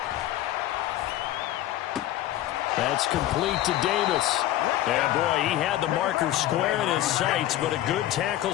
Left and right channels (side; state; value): right; quieter; 13.9 dB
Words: That's complete to Davis. Yeah, boy, he had the marker square in his sights, but a good